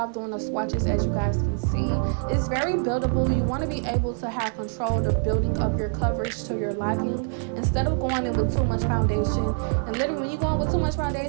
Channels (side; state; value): left; silent; 62 dB below the other